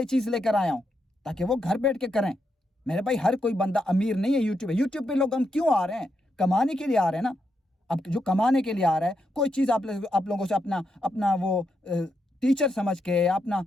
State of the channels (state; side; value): normal; both; correlation 0.82